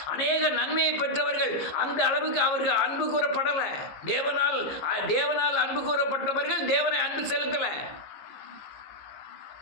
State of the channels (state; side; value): late; right; 15 ms